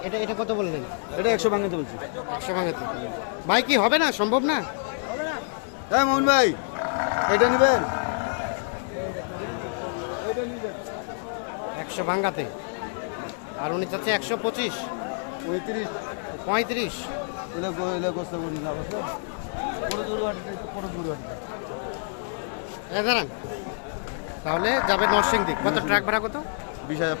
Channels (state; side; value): silent; right; digital silence